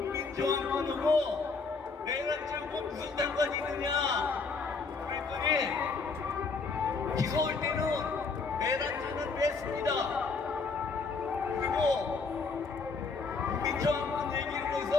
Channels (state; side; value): quieter; right; 4.5 dB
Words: 내란죄하고 무슨 상관이 있느냐 그랬더니, 기소할 때는 내란죄는 뺐습니다. 그리고 국민저항권 얘기를 해서